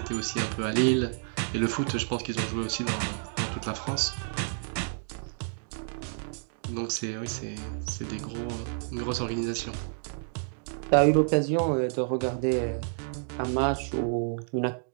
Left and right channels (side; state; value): left; silent; digital silence